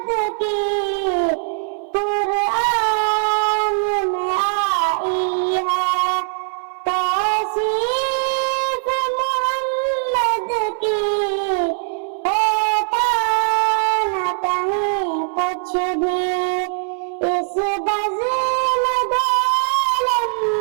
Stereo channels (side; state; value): left; silent; 66 dB below the other